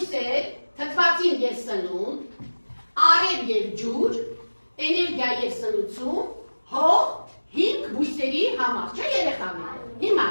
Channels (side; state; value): both; inverted; correlation -1.00